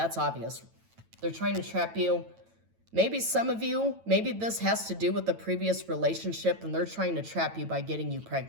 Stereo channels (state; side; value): late; left; 9.1 ms